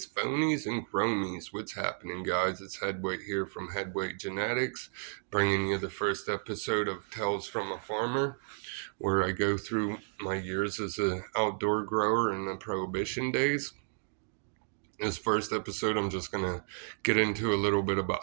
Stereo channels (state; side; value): silent; left; digital silence